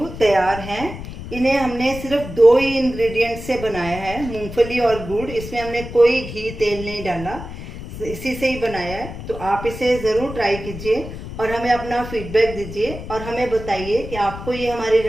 तैयार हैं। इन्हें हमने सिर्फ 2 ही इंग्रेडिएंट से बनाया है, मूंगफली और गुड़। इसमें हमने कोई घी तेल नहीं डाला, इसी से ही बनाया है। तो आप इसे ज़रूर ट्राई कीजिए और हमें अपना फीडबैक दीजिए और हमें बताइए कि आपको ये हमारी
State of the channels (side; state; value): left; noise; rumble, 10 dB below the sound